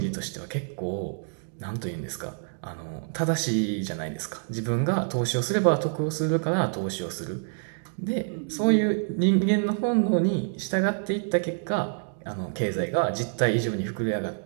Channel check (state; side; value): silent; left; 60 dB below the other